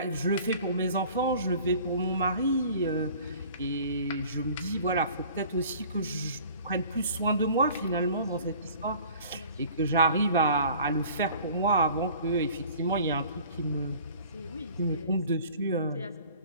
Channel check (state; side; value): inverted; both; correlation -0.48